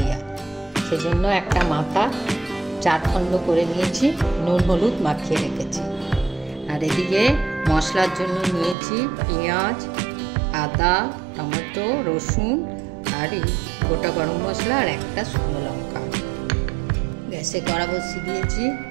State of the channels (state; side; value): drops out; left; at 8.8 s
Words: সেজন্য একটা মাথা 4 খণ্ড করে নিয়েছি, নুন হলুদ মাখিয়ে রেখেছি। আর এদিকে মশলার জন্য নিয়েছি পেঁয়াজ, আদা, টমেটো, রসুন আর এই গোটা গরম মশলা আর একটা শুকনো লঙ্কা। গ্যাসে কড়া বসিয়ে দিয়েছি,